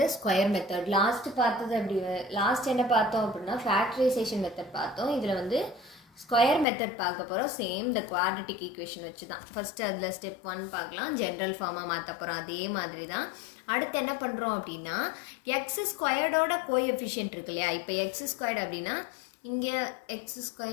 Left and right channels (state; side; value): drops out; right; at 6.7 s